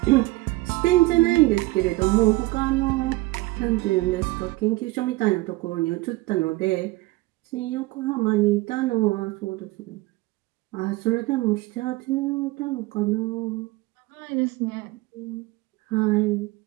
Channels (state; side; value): quieter; left; 20.5 dB